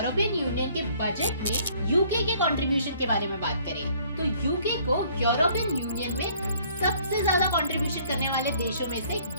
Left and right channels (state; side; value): inverted; both; correlation -0.59